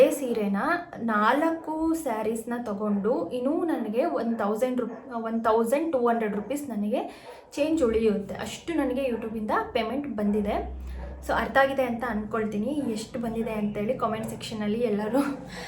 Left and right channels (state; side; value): identical; both; correlation 1.00